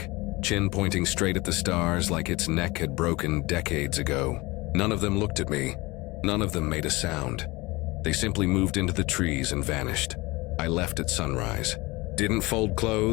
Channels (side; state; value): right; quieter; 22.6 dB